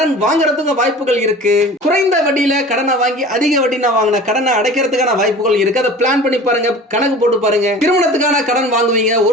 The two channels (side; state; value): both; normal; correlation 0.40